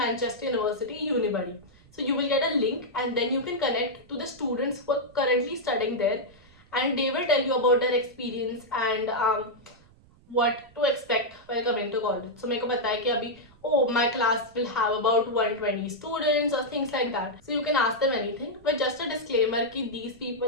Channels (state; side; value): noise; right; rumble, 27 dB below the sound